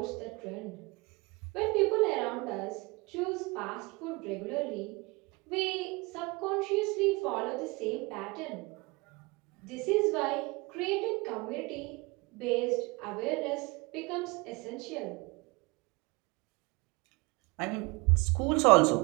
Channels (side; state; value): left; quieter; 25.9 dB